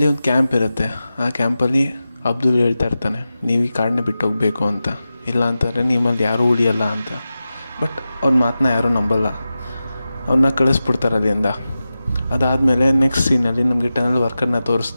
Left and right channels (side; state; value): both; inverted; correlation -0.93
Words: ಒಂದು ಕ್ಯಾಂಪ್ ಇರುತ್ತೆ. ಆ ಕ್ಯಾಂಪಲ್ಲಿ ಅಬ್ದುಲ್ ಹೇಳ್ತಾ ಇರ್ತಾನೆ, ನೀವು ಈ ಕಾಡನ್ನ ಬಿಟ್ಟು ಹೋಗಬೇಕು ಅಂತ, ಇಲ್ಲ ಅಂತಂದರೆ ನಿಮ್ಮಲ್ಲಿ ಯಾರೂ ಉಳಿಯಲ್ಲ ಅಂತ. ಬಟ್ ಅವ್ನ ಮಾತನ್ನ ಯಾರೂ ನಂಬಲ್ಲ, ಅವನ್ನ ಕಳಿಸ್ಬಿಡ್ತಾರೆ ಅಲ್ಲಿಂದ. ಅದಾದಮೇಲೆ ನೆಕ್ಸ್ಟ್ ಸೀನಲ್ಲಿ ನಮಗೆ ಟನಲ್ ವರ್ಕರ್ನ